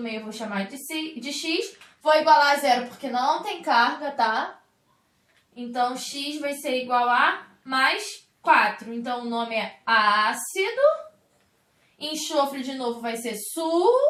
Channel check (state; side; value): identical; both; correlation 1.00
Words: meio eu vou chamar de x. Vou igualar a 0 porque não tem carga, tá? Então, x vai ser igual a mais 4. Então, o nome é ácido. Enxofre, de novo, vai ser